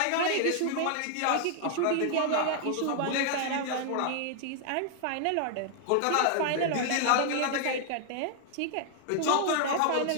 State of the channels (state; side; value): different; both; correlation 0.00